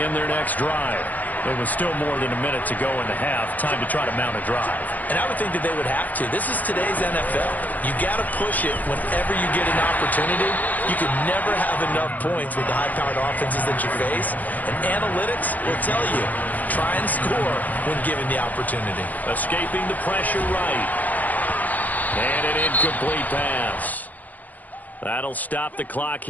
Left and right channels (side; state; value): right; late; 0.081 ms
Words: their next drive. There was still more than a minute to go in the half. Time to try to mount a drive. And I would think that they would have to. This is today's NFL. You got to push it whenever you get an opportunity. You can never have enough points with the high-powered offenses that you face. And analytics will tell you, try and score when given the opportunity. Escaping the pressure right. And an incomplete pass. That'll stop the clock